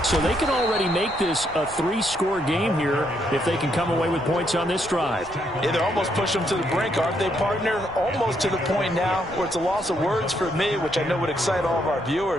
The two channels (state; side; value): noise; left; rumble, 20 dB below the sound